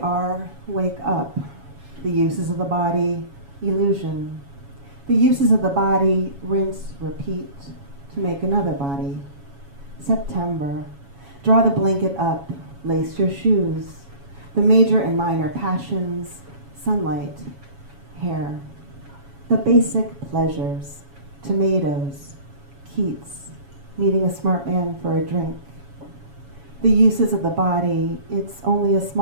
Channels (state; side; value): late; left; 7.2 ms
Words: wake up. The uses of the body, illusion. The uses of the body, rinse, repeat, to make another body. September, draw the blanket up, lace your shoes. The major and minor passions, sunlight, hair. The basic pleasures, tomatoes, Keats, meeting a smart man for a drink. The uses of the body, it's only a